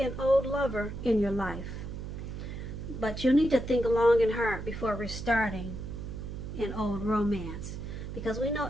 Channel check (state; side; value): noise; right; hum, 8 dB below the sound